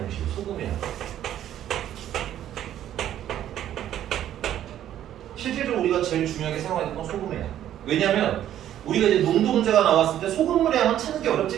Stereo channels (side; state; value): left; quieter; 11.5 dB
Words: 보시죠. 소금의 양. 실질적으로 우리가 제일 중요하게 생각하는 건 소금의 양. 왜냐면 우리가 이제 농도 문제가 나왔을 때 소금물의 양은 찾는 게